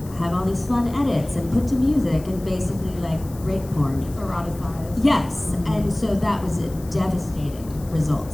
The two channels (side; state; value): left; noise; hiss, 21 dB below the sound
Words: have all these fun edits and put to music and basically like rape porn. Eroticized. Yes, and so that was a devastating result